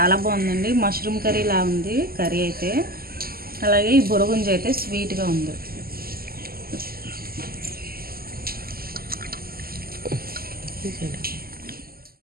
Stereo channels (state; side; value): late; left; 0.43 ms